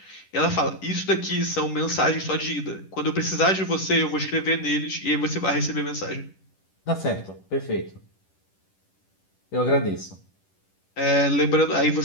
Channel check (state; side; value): late; right; 10 ms